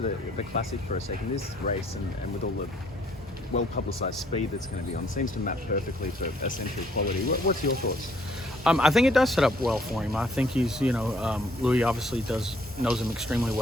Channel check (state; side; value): normal; both; correlation 0.64